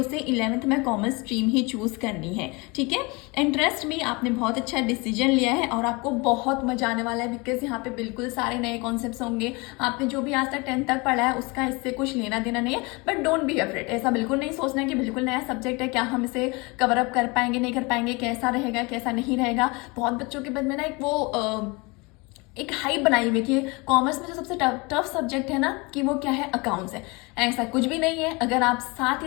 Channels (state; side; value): quieter; right; 26.9 dB